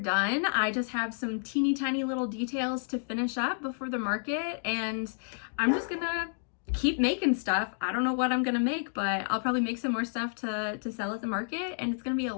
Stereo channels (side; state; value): right; silent; digital silence